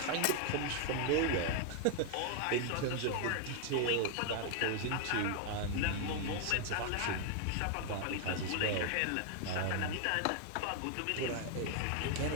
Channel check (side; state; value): both; different; correlation 0.00